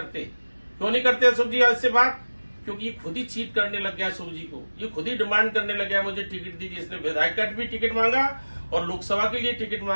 क्यों नहीं करते अशोक जी आज से बात? क्योंकि ये खुद ही चीट करने लग गया अशोक जी को, ये खुद ही डिमांड करने लग गया मुझे टिकट दीजिए। इसने विधायक का भी टिकट मांगा और लोकसभा के लिए टिकट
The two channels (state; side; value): inverted; both; correlation -1.00